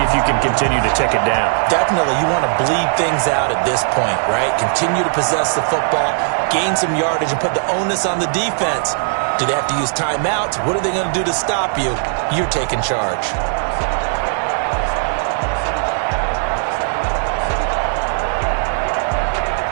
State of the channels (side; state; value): left; silent; digital silence